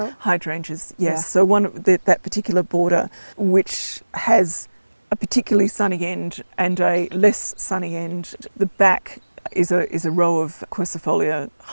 Hydrangeas, yes. Yeah. So that particular border, which has a particularly sunny end and a less sunny end, the back is a row of quercifolia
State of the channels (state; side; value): inverted; both; correlation -1.00